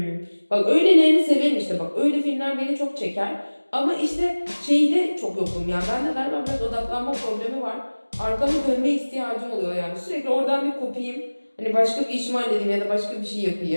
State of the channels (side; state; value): both; inverted; correlation -1.00